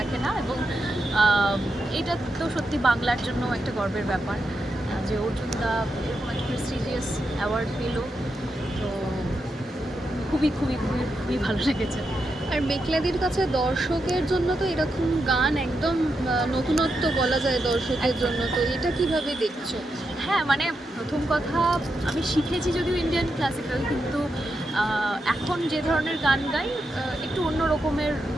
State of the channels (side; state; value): both; normal; correlation 0.85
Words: না। এবং এটা তো সত্যি বাংলার জন্য একটা গর্বের ব্যাপার যে অর্জুনদা এরকম একটা প্রেস্টিজিয়াস অ্যাওয়ার্ড পেল। তো খুবই খুবই খুবই খুবই ভালো লেগেছে। আর মেঘলাদির কাছে দর্শকের জন্য তো এরকম গান একদম নতুনত্ব বলা যায় দর্শকের জন্য, তো এটা কিভাবে দেখছো? হ্যাঁ, মানে প্রথম কথা আমি শিখেছি যদিও ইন্ডিয়ান ক্লাসিক্যাল, কিন্তু এখন যে ধরনের গান গাই একটু অন্য রকমের